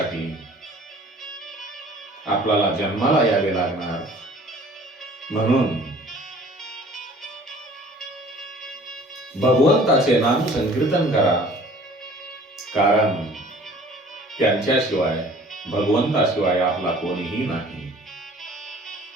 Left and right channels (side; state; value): both; normal; correlation 0.50